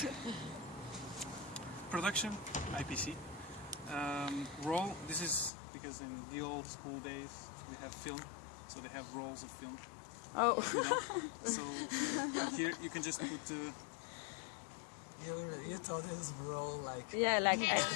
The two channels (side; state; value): right; drops out; at 5.5 s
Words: production, IPC. Roll, this is because in the old school days we have film, so they have rolls of film. Oh. You know? So here you can just put You thought this role like Yeah, like Yeah,